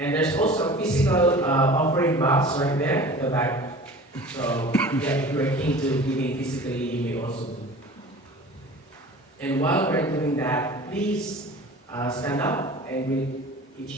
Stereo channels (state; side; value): normal; both; correlation 0.41